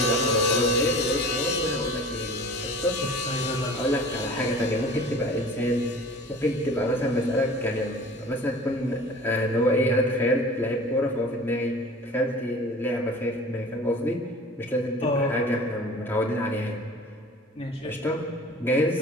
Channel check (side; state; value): both; normal; correlation 0.42